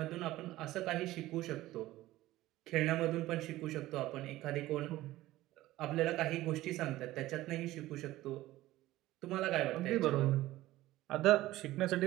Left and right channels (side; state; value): left; quieter; 16.4 dB